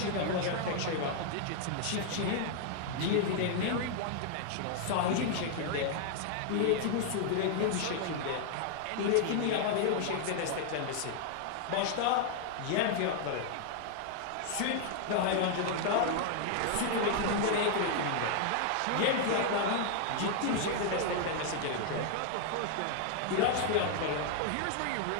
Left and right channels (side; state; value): both; different; correlation 0.00